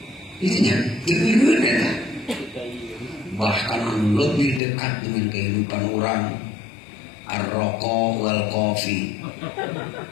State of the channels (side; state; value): right; drops out; at 4.6 s